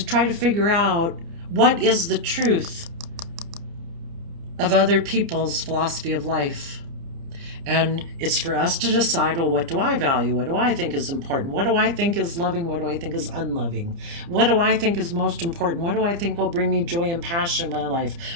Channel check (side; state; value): left; late; 30 ms